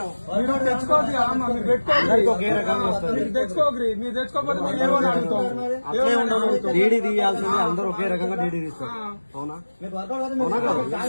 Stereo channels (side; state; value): both; inverted; correlation -1.00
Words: మీరు తెచ్చుకోకరి, మీరు తెచ్చుకోకపోతే అట్లే ఉండదు. డీడీ తీయాల్సింది అందరూ ఒకే రకంగా డీడీ తీస్తారు. అవునా